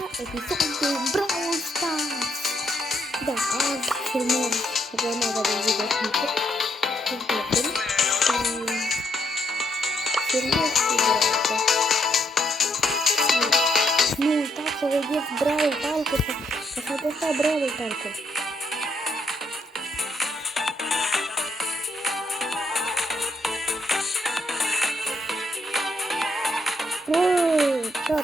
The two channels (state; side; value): normal; both; correlation 0.74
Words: episod de Brawl Stars. Da, azi filmăm urmarea de videoclip. Nu uitați să vedeți Brawl Talk-ul, să faceți Brawl Talk-ul.